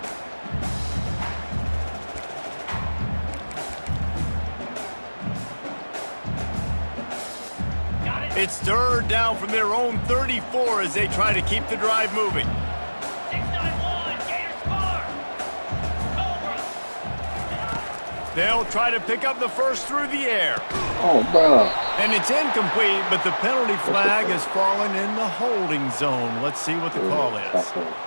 It's third down from their own 34 as they try to keep the drive moving. 691, Gators score. Cobra. They'll try to pick up the first through the air. Oh, bro. And it's incomplete, but the penalty flag has fallen in the holding zone. Let's see what the call is.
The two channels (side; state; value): both; inverted; correlation -1.00